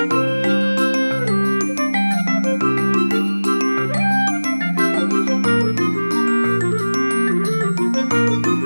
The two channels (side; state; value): both; inverted; correlation -1.00